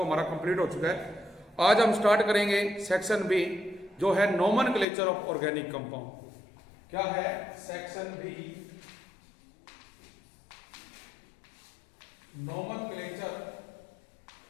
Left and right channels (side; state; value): right; drops out; at 4.9 s